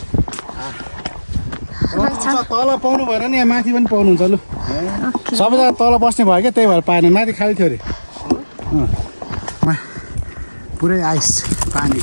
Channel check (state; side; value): inverted; both; correlation -1.00